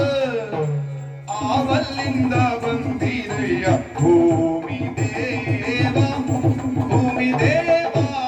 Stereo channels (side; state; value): both; identical; correlation 1.00